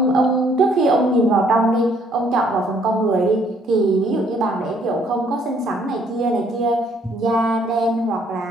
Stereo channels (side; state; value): both; normal; correlation 0.65